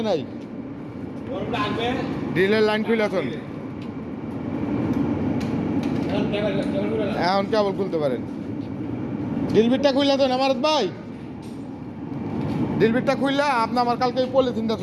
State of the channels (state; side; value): identical; both; correlation 1.00